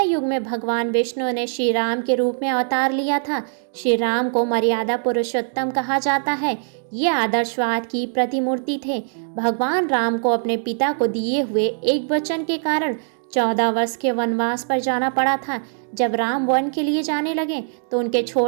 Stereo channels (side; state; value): left; silent; digital silence